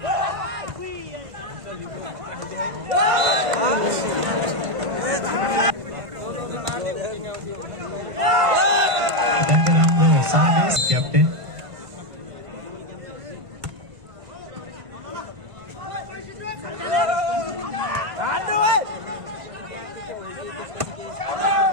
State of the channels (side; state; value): left; late; 1.5 ms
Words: अत्यन्तै राम्रो सर्भिस क्याप्टेन।